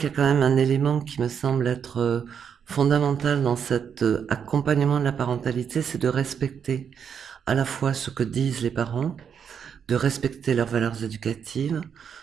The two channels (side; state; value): left; quieter; 7.5 dB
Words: y a quand même un élément qui me semble être fondamental dans cet accompagnement de la parentalité, c'est de respecter à la fois ce que disent les parents, de respecter leurs valeurs éducatives,